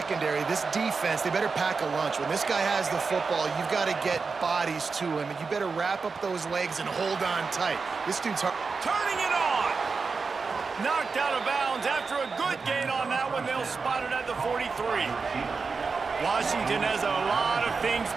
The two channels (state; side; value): quieter; left; 4.7 dB